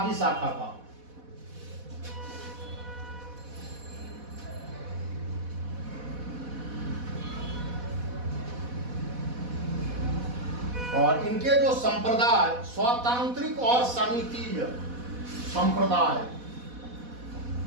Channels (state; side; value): late; left; 4.1 ms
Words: शाखा का। और इनके जो संप्रदाय स्वतांत्रिक और समितीय संप्रदाय,